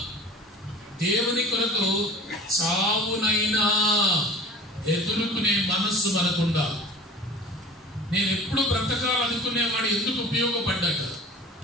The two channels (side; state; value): both; normal; correlation 0.41